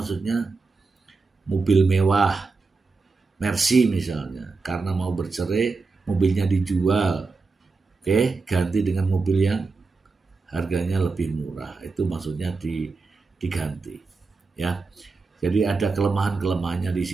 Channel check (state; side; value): quieter; left; 4.1 dB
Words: mobil mewah, Mercy misalnya, karena mau bercerai, mobilnya dijual. Oke, ganti dengan mobil yang harganya lebih murah. Itu maksudnya diganti. Ya. Jadi ada kelemahan-kelemahannya di